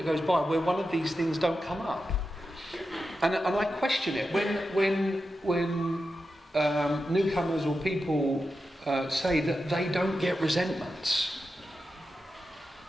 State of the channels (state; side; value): normal; both; correlation 0.90